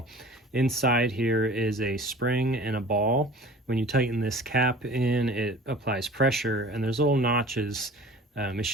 Inside here is a spring and a ball. When you tighten this cap in, it applies pressure, and there's little notches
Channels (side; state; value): both; normal; correlation 0.44